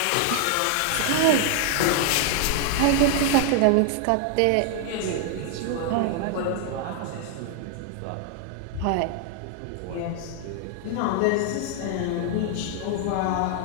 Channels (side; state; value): both; different; correlation 0.00